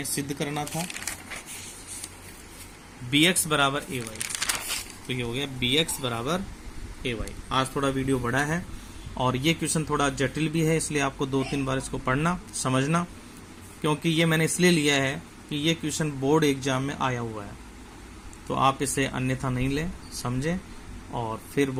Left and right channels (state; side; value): identical; both; correlation 1.00